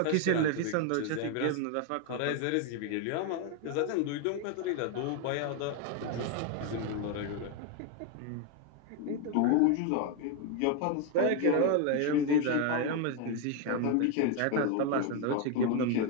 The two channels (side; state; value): both; different; correlation 0.01